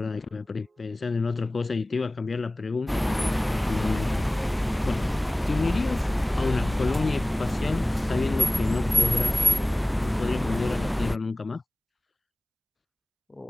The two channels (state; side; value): normal; both; correlation 0.98